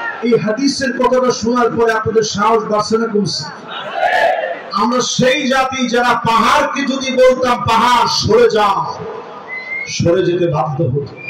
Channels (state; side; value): identical; both; correlation 1.00